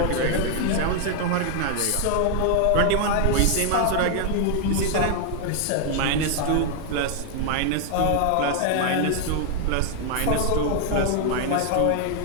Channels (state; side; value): different; both; correlation 0.00